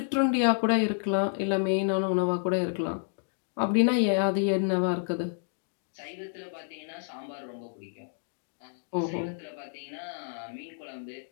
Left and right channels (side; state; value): right; silent; digital silence